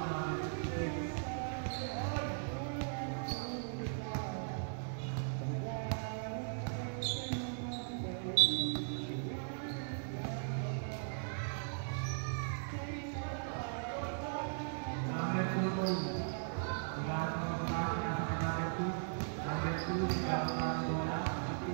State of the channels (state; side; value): silent; left; 52 dB below the other